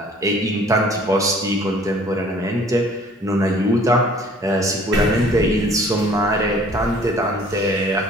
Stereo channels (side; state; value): both; normal; correlation 0.53